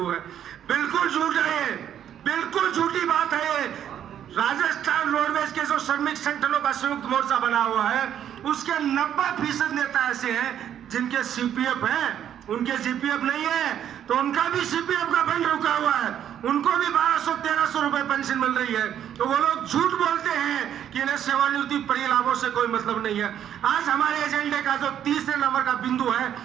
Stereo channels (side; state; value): left; quieter; 10.0 dB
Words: है। बिल्कुल झूठ है, बिल्कुल झूठी बात है। राजस्थान रोडवेज के जो श्रमिक संगठनों का संयुक्त मोर्चा बना हुआ है उसके 90% नेता ऐसे हैं जिनके सीपीएफ है, उनके सीपीएफ नहीं है, तो उनका भी सीपीएफ का फंड रुका हुआ है, उनको भी 1200-1300 रुपए पेंशन मिल रही है। तो वो लोग झूठ बोलते हैं कि इन्हें सेवानिवृत्ति परिलाभों से कोई मतलब नहीं है। आज हमारे एजेंडे का जो 3 नंबर का बिंदु है